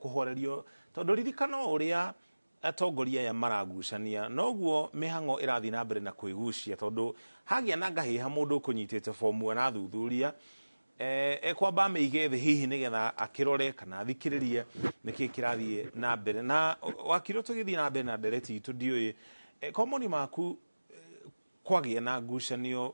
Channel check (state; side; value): inverted; both; correlation -1.00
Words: tondu ririkano uria atongoria ya maragucania noguo mihango irathi na mbere na kwigucia tondu hagia na ngahiha mundu kunyitite form na thuthuria kwamba meige the hihi nigetha akirore kana thikiririe niki kirathie na mbere na wakiro tugithie na mbere na ndereti itu ndioi komoni maku kwagia na